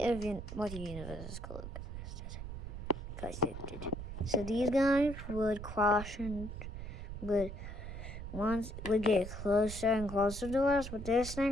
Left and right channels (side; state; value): right; noise; rumble, 8 dB below the sound